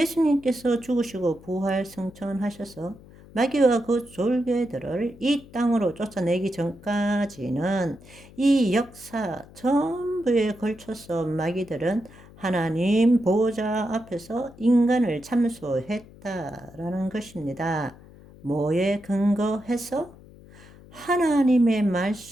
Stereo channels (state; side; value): noise; left; hum, 21 dB below the sound